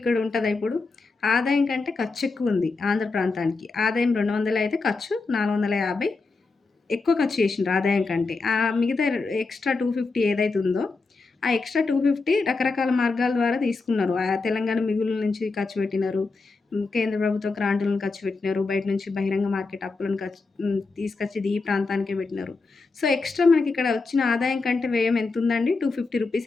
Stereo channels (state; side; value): quieter; right; 4.0 dB